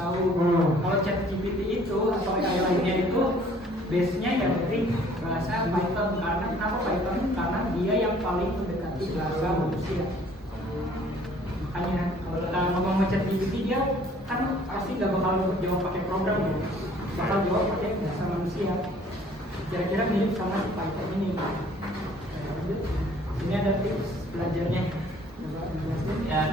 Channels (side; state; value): both; normal; correlation 0.56